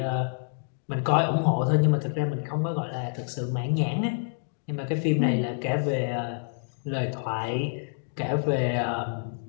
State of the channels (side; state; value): right; silent; digital silence